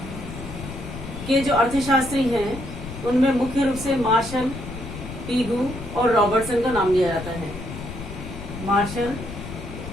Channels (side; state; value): left; noise; rumble, 10 dB below the sound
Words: के जो अर्थशास्त्री हैं उनमें मुख्य रूप से मार्शल, पीगू और रॉबर्टसन का नाम लिया जाता है। मार्शल